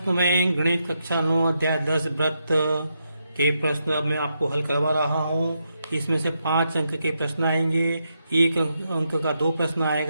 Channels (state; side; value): inverted; both; correlation -0.82